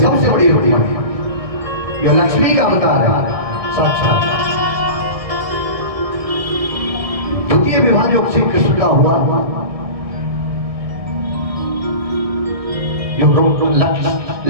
बड़ी रुक्मणी जो लक्ष्मी का अवतार है साक्षात। द्वितीय विवाह जो श्री कृष्ण का हुआ, जो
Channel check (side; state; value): left; late; 1.6 ms